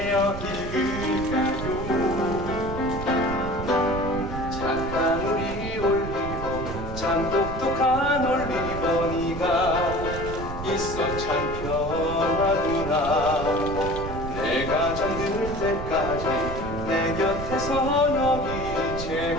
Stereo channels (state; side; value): noise; right; rumble, 7 dB below the sound